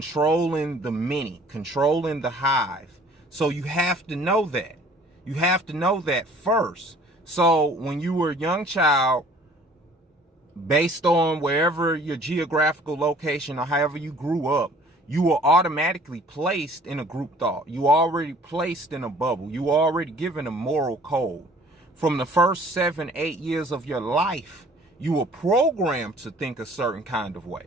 the many, controlling the hive. So you have to know that. You have to know that first. So when you were a young child, based on wherever your geographical location or however you grew up, you were automatically placed in a group thought. You were already placed in a bubble. You were already given a moral code. From the first 7, 8 years of your life, you were programmed to think a certain kind of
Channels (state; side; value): normal; both; correlation 0.53